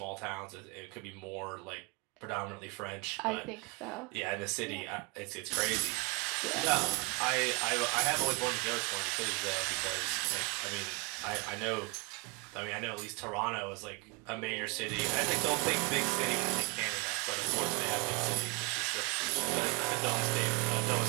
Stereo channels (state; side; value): quieter; left; 30.1 dB